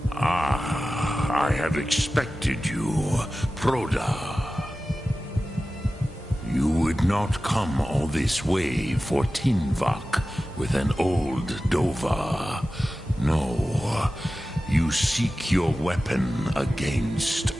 Ah, I have expected you, Proda. You would not come all this way for Tinvak with an old Dova. No, you seek your weapon against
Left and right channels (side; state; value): both; normal; correlation 0.95